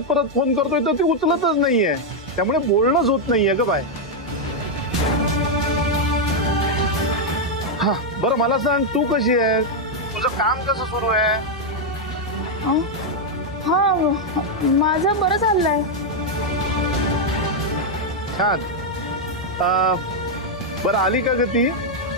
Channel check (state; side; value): normal; both; correlation 0.00